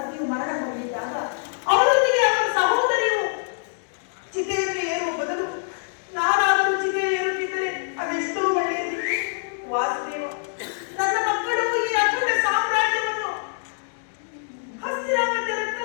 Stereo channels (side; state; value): right; silent; digital silence